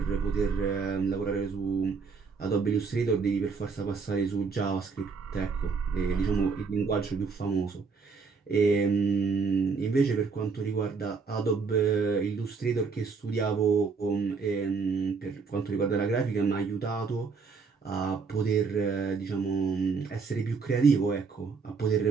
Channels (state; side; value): quieter; left; 5.0 dB